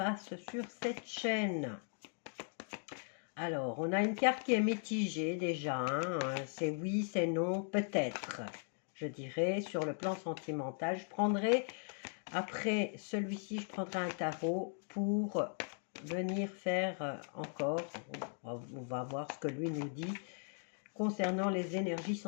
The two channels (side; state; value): right; silent; 52 dB below the other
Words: sur cette chaîne. Alors, on a une carte qui est mitigée déjà, hein. C'est oui, c'est non, peut-être. Je dirais, sur le plan sentimental, je prendrai, après celui-ci, je prendrai un tarot pour venir faire encore, on va voir ce que lui nous dit, concernant les énergies